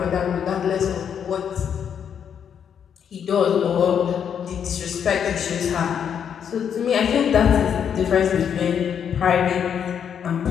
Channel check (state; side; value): quieter; right; 8.1 dB